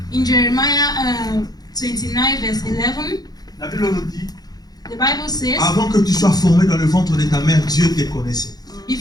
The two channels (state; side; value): late; right; 0.19 ms